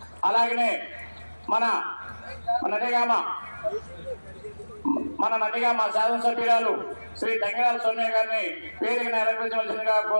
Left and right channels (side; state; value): both; inverted; correlation -1.00